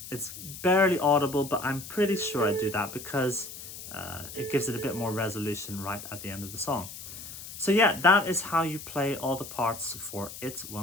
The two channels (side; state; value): left; noise; hiss, 12 dB below the sound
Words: It's barely audible, but I'm pretty sure I do that because it gives it a bit more resolution right at the end of the song. So yeah, that is how you play all the parts for It